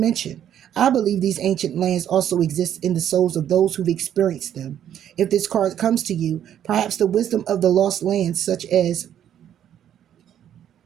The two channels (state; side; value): quieter; left; 10.2 dB